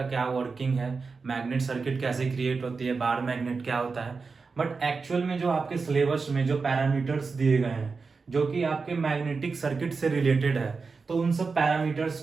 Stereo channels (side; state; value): left; quieter; 4.6 dB